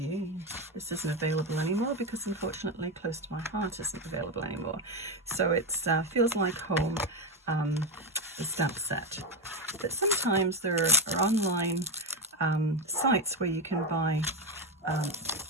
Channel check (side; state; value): both; normal; correlation 0.12